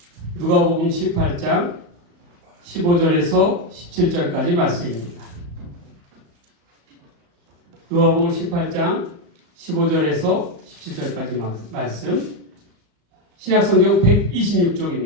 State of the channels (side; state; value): left; late; 34 ms